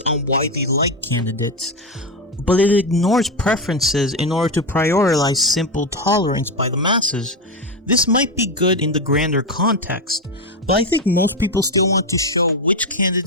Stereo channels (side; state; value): both; normal; correlation 0.12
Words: on widely liked candidates, but it ignores preferences in order to prioritize simple tolerance by the masses. This might be good in the grander context, but I think most people still want to show which